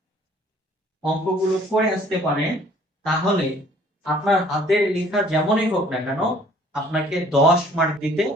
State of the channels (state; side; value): normal; both; correlation 0.57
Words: অঙ্কগুলো করে আসতে পারেন তাহলে আপনার হাতের লেখা যেমনই হোক না কেন আপনাকে 10 মার্ক দিতে